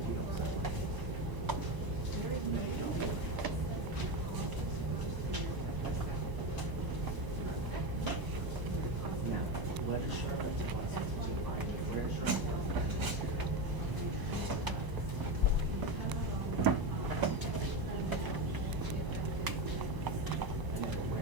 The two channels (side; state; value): left; late; 1.0 ms